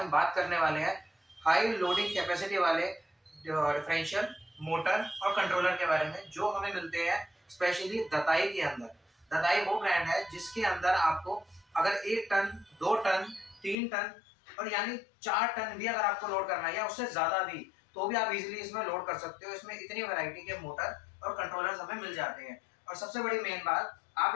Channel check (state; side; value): drops out; right; at 13.8 s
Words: बात करने वाले हैं हाई लोडिंग कैपेसिटी वाले डिफरेंशियल मोटर और कंट्रोलर के बारे में, जो हमें मिलते हैं स्पेशली दताई के अंदर। दताई वो ब्रांड है जिसके अंदर आपको अगर 1 टन, 2 टन, 3 टन और यानी 4 टन भी अगर आपको लोड करना है या उससे ज़्यादा भी, तो भी आप इजीली इसमें लोड कर सकते हो। इसमें इतनी वैरायटी के मोटर और कंट्रोलर्स हमें मिल जाते हैं। और सबसे बड़ी मेन बात,